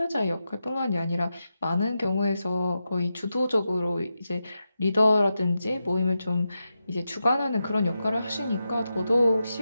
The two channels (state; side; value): inverted; both; correlation -0.89